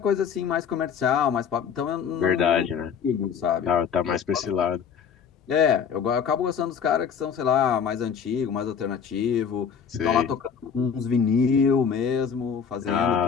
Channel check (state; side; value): quieter; right; 7.1 dB